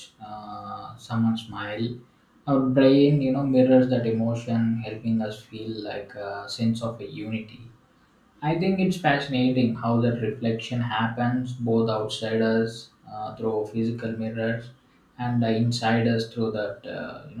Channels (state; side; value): identical; both; correlation 1.00